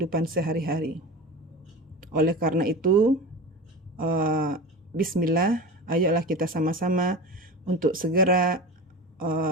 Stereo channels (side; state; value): both; normal; correlation 0.30